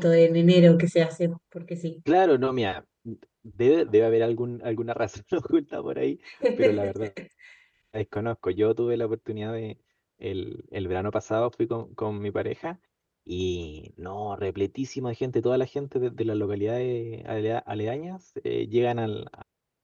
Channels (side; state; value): both; identical; correlation 1.00